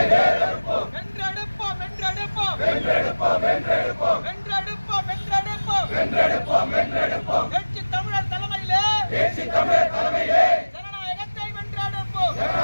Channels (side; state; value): both; inverted; correlation -1.00